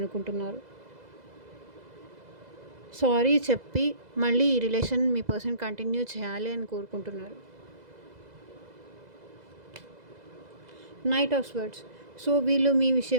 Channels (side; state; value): left; late; 2.0 ms